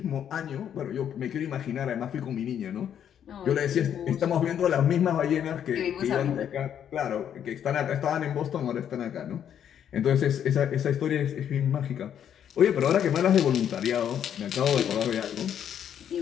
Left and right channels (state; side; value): quieter; right; 9.3 dB